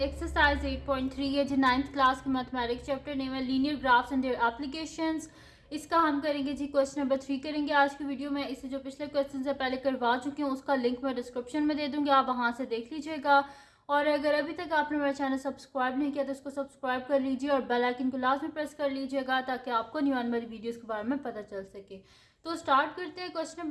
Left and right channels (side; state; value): both; identical; correlation 1.00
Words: एक्सरसाइज 8.3 है जी 9th क्लास के मैथमेटिक्स चैप्टर नेम है linear graphs and their applications. इसका हम करेंगे जी क्वेश्चन नंबर 3 करेंगे आज की वीडियो में। इसे जो पिछले क्वेश्चन से पहले करवा चुकी हूँ उसका लिंक मैं डिस्क्रिप्शन में दे दूँगी, आप वहाँ से देख लीजिएगा। और अगर अभी तक आपने मेरा चैनल सब्सक्राइब नहीं किया तो इसको सब्सक्राइब कर लीजिए और बेल आइकन को लाजमी प्रेस कर लीजिएगा ताकि आपको न्यू आने वाली वीडियोज़ के बारे में पता चल सके। तो स्टार्ट करते हैं। क्वेश्चन